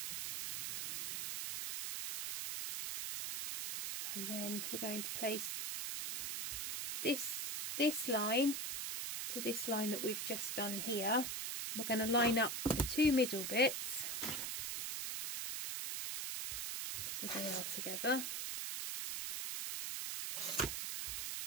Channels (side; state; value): right; noise; hiss, 2 dB below the sound